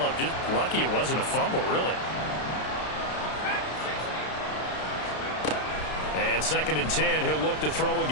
Just lucky it wasn't a fumble, really. And 2nd and 10, he'll look to throw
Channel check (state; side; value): late; right; 32 ms